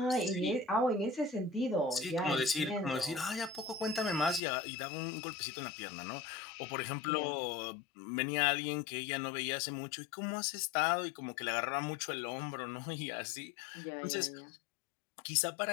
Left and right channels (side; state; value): right; drops out; at 4.4 s